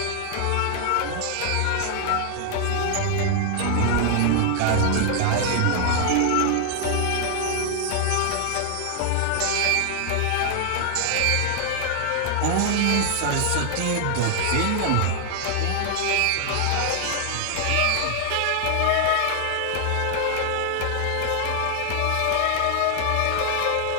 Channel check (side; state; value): both; different; correlation 0.00